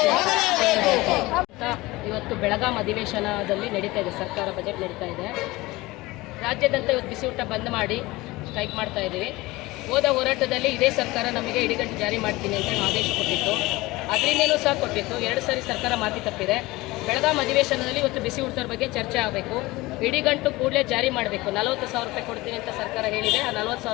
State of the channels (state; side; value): quieter; right; 20.6 dB